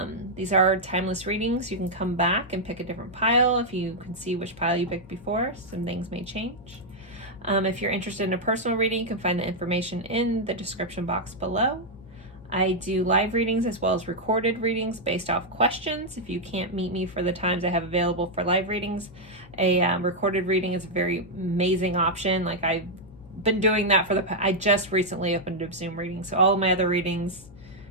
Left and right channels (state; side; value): noise; left; hum, 21 dB below the sound